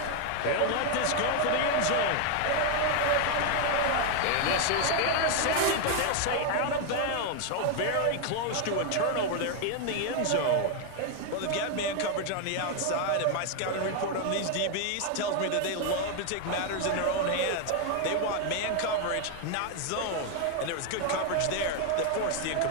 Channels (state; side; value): different; both; correlation 0.01